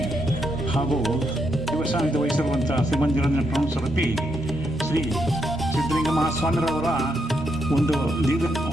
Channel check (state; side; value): normal; both; correlation 0.80